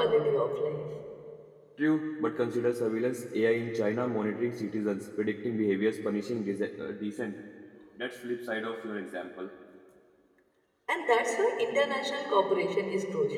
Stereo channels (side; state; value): both; identical; correlation 1.00